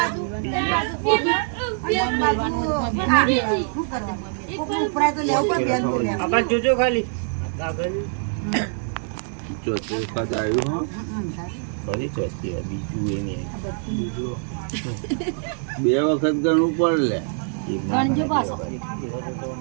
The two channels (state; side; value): silent; left; 63 dB below the other